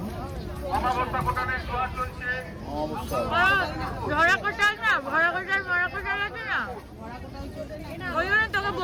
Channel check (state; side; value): identical; both; correlation 1.00